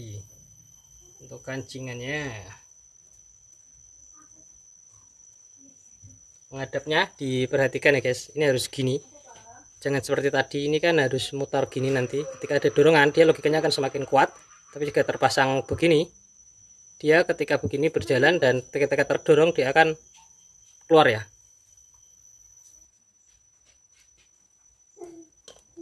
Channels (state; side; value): identical; both; correlation 1.00